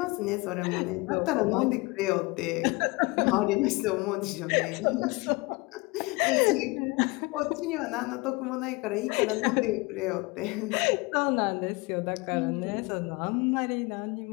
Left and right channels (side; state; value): right; quieter; 25.3 dB